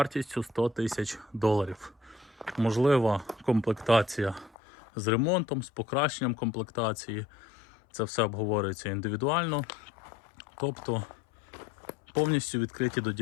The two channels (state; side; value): drops out; right; at 4.5 s